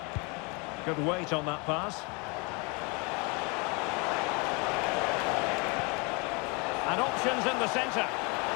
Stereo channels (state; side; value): quieter; right; 30.7 dB